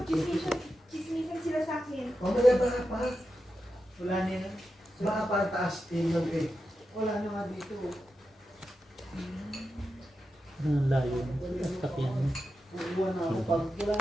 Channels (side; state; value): both; normal; correlation 0.90